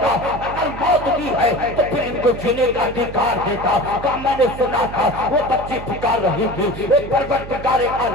अगर मौत दी है तो फिर इनको जीने का अधिकार देता। कहा मैंने सुना था वो बच्ची पुकार रही थी, एक परवरदिगार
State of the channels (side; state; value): right; noise; hum, 11 dB below the sound